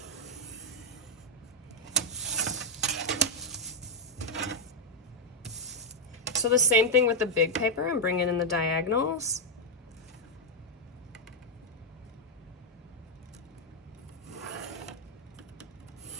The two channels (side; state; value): both; normal; correlation -0.02